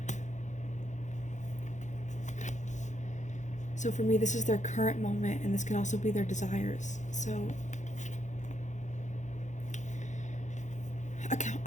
So for me, this is their current moment, and this can also be their desires. So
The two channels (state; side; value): late; right; 0.35 ms